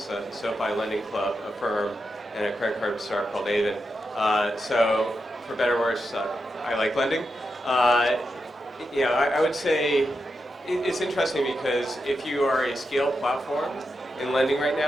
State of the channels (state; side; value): normal; both; correlation 0.87